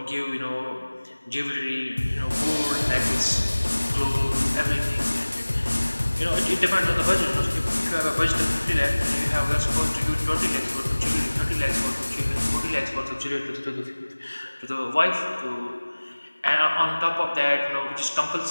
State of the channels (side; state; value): both; inverted; correlation -1.00